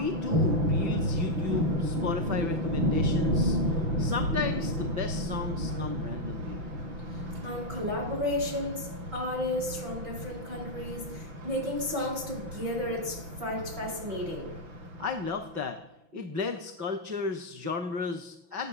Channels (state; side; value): late; left; 5.9 ms